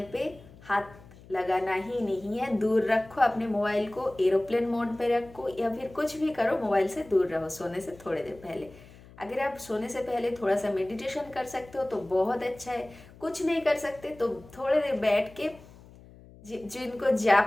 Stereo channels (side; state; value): left; noise; hum, 22 dB below the sound